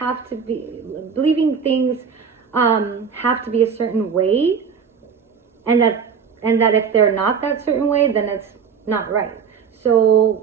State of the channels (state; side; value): quieter; left; 6.5 dB